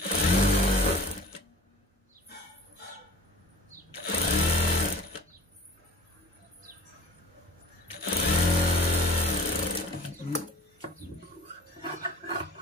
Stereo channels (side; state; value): both; normal; correlation 0.44